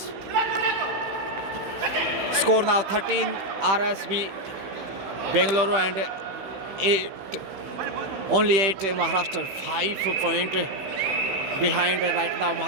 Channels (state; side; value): late; left; 15 ms